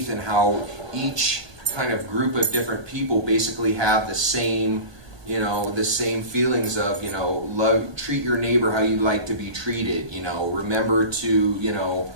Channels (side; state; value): left; late; 1.2 ms